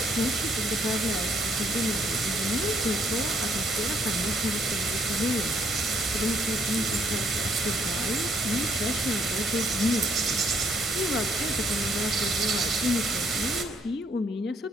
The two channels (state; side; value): normal; both; correlation 0.68